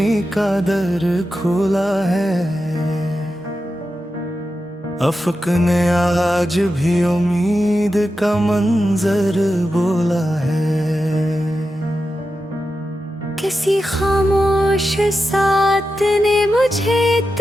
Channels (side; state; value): both; normal; correlation 0.90